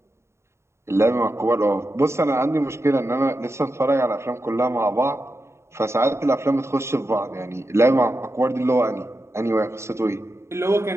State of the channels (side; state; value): left; late; 0.13 ms